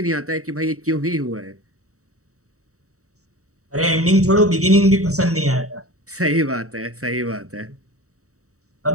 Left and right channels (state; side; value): late; left; 0.65 ms